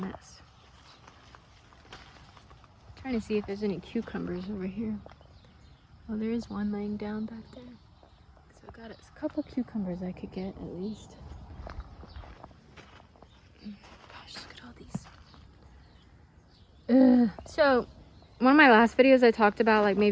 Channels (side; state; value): both; identical; correlation 1.00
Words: Trying to see if there's any cucumbers over here. Oh, there is one laying down back there. So I got a couple cucumbers I could get at least. Gosh, look at all these. So, one of my last videos I talked about like